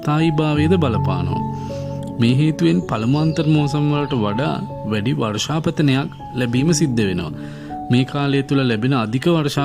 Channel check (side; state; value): both; identical; correlation 1.00